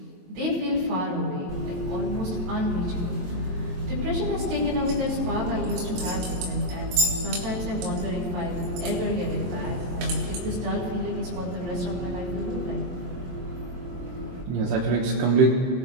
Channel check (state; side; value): late; left; 23 ms